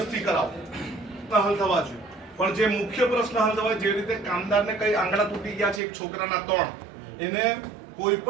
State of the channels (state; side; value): drops out; left; at 5.8 s